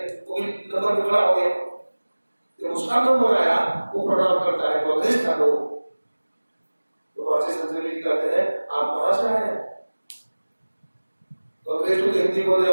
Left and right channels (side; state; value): both; inverted; correlation -1.00